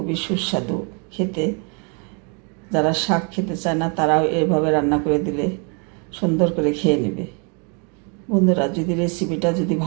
সুস্বাদু খেতে। যারা শাক খেতে চায় না তারাও এইভাবে রান্না করে দিলে সুন্দর করে খেয়ে নেবে। বন্ধুরা যদি রেসিপিটা যদি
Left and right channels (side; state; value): left; quieter; 36.2 dB